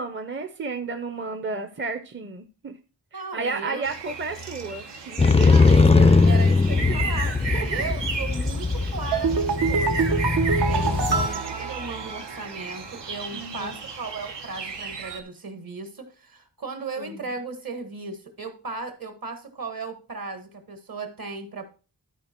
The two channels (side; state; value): both; normal; correlation 0.62